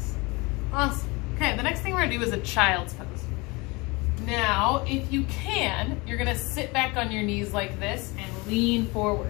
Awesome. Okay, the next thing we're gonna do is a child's pose. Now, if you can, you're gonna sit back on your knees like this and lean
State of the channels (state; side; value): quieter; right; 25.8 dB